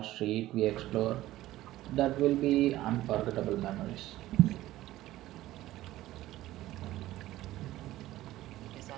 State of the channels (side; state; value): left; quieter; 15.6 dB